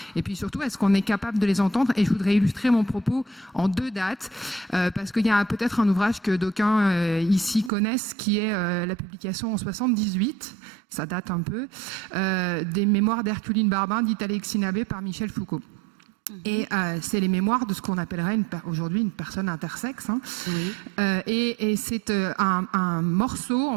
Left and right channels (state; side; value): drops out; left; at 7.7 s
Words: et puis surtout est-ce qu'on est capable de les entendre. Et je voudrais illustrer mon propos en deux dates, parce qu'il y a peut-être un ouvrage que d'aucuns ici connaissent, qui est la publication en 78, ça date un peu, des mémoires d'Herculine Barbin, dites Alexis Nabé, par Michel Foucault. Et c'est les mémoires de ce qu'on appellerait aujourd'hui une personne intersexe. Hein. Oui. Et c'est un morceau,